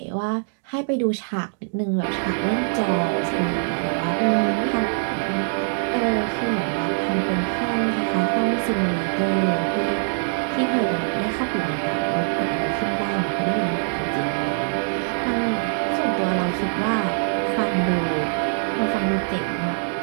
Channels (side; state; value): left; silent; digital silence